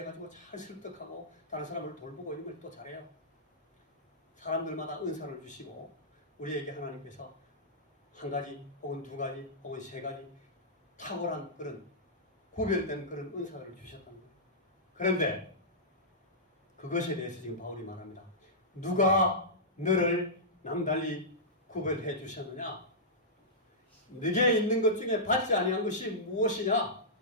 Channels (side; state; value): both; normal; correlation -0.14